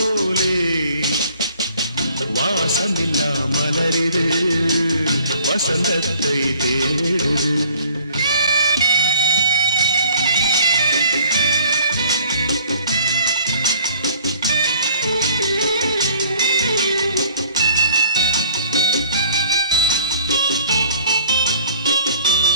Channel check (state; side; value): inverted; both; correlation -0.54